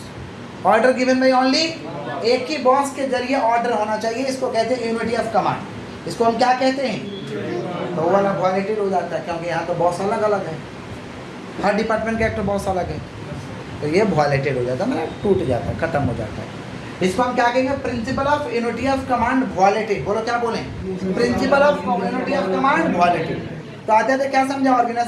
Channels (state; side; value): identical; both; correlation 1.00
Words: order given by only एक ही बॉस के जरिए ऑर्डर होना चाहिए, इसको कहते हैं यूनिटी ऑफ कमांड। इसको हम क्या कहते हैं? तो वो वाला वॉलेटिव हो जाता है, क्योंकि यहाँ तो बॉस अलग अलग है, हर डिपार्टमेंट का एक तो बॉस अलग है, तो ये वॉलेटेड हो जाता है, मतलब टूट जाता है, खत्म हो जाता है। इसको हम क्या कहेंगे? Principal of unity of command वॉलेटेड। बोलो क्या बोलें? Principal of unity of command वॉलेटेड। तो आते थे क्या समझा?